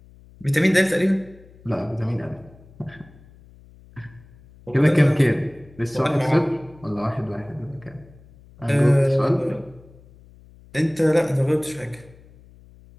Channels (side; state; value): left; noise; hum, 24 dB below the sound